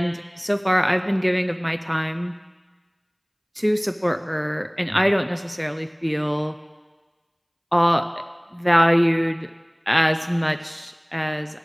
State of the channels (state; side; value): identical; both; correlation 1.00